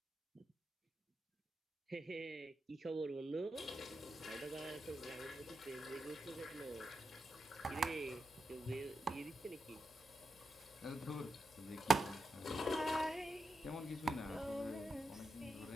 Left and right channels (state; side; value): normal; both; correlation 0.87